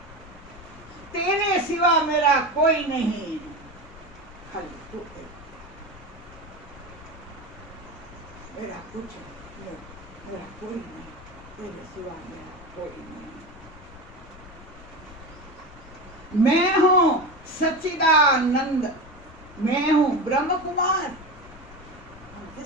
तेरे सिवा मेरा कोई नहीं, खाली तू एक। मेरा कुछ नहीं, मेरा कोई नहीं, तेरे सिवा मेरा कोई नहीं। मैं हूं सच्चिदानंद, मैं हूं ब्रह्म कुमार। हम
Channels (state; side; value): noise; left; rumble, 19 dB below the sound